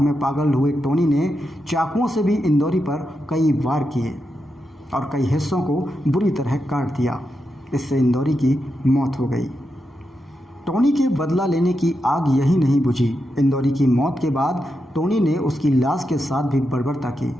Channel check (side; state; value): both; normal; correlation 0.86